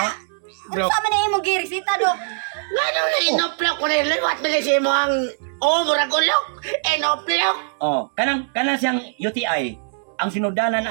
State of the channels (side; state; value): left; silent; 65 dB below the other